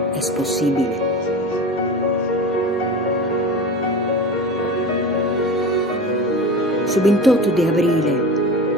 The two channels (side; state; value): both; normal; correlation 0.31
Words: è possibile. Su 28 di aprile